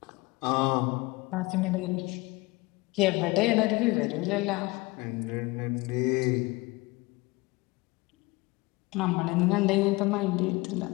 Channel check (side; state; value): right; quieter; 23.3 dB